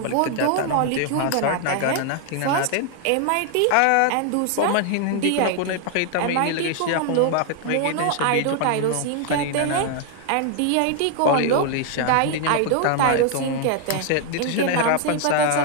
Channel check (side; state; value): both; different; correlation 0.00